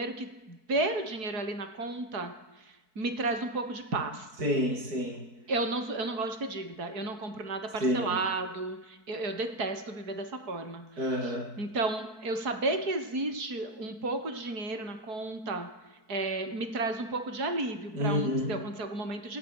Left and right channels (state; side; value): late; left; 4.6 ms